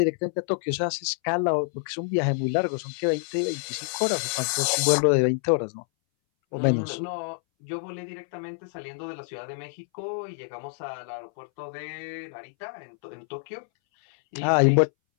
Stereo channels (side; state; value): right; silent; 60 dB below the other